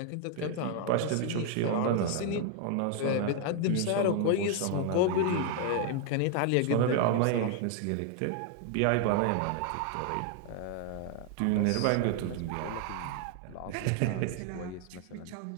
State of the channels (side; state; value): both; different; correlation 0.00